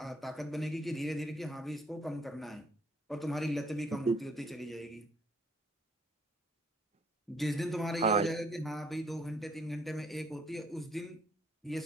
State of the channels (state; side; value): normal; both; correlation 0.64